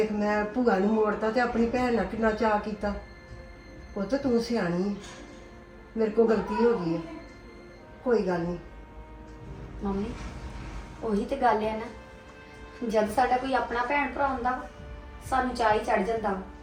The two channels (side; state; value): both; identical; correlation 1.00